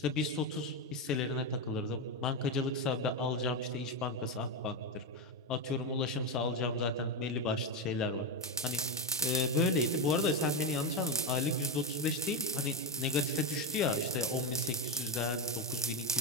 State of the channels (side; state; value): both; normal; correlation 0.10